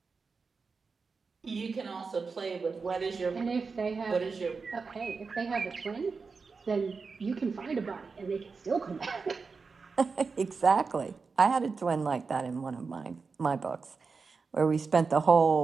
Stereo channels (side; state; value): left; quieter; 4.8 dB